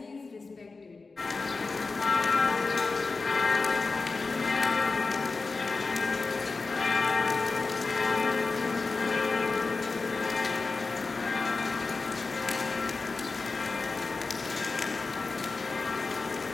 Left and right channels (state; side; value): quieter; right; 4.0 dB